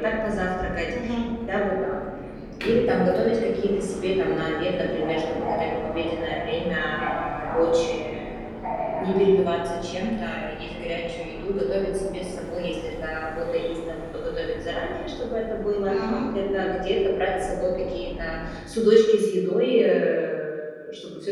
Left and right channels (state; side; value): identical; both; correlation 1.00